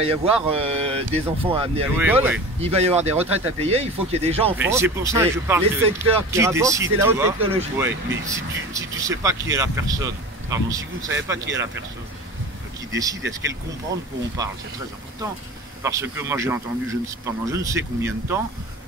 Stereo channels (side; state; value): both; normal; correlation 0.35